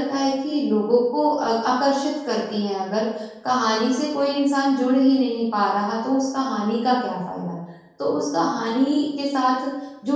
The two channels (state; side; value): identical; both; correlation 1.00